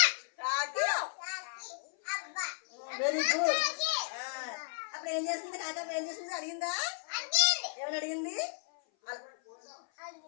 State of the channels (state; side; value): silent; right; 55 dB below the other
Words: కాకి. Very good. అప్పుడు ఏం చేస్తుంది కాకి? ఏం చేస్తుంది అడిగిందా? ఏమని అడిగింది?